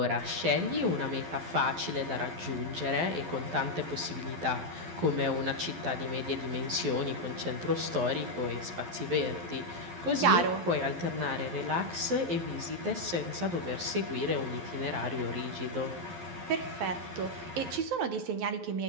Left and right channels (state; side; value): late; left; 12 ms